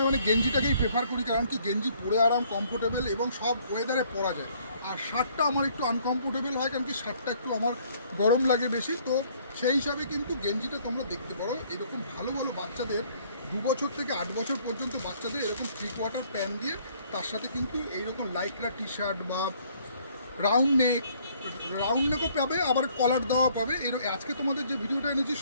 মানে গেঞ্জিটাকেই প্রেফার করি, কারণ কি গেঞ্জি পরে আরাম, কমফোর্টেবল, এবং সব ওয়েদারে পরা যায়। আর শার্টটা আমার একটু আনকমফোর্টেবল হয়, কারণ কি শার্টটা একটু আমার গরম লাগে বেশি। তো সেই হিসাবে কিন্তু গেঞ্জিটা তোমরা দেখতে পারো, এরকম ভালো ভালো বাচ্চাদের 2 বছর থেকে 8 বছর পর্যন্ত বাচ্চাদের এরকম 3/4 প্যান্ট দিয়ে তার সাথে কিন্তু এইরকম লাইকরা টি শার্ট বা রাউন্ড নেকও পাবে, আবার কলার দেওয়া পাবে। আজকে তোমাদের যে ভিডিওটা এনেছি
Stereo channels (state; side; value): inverted; both; correlation -0.62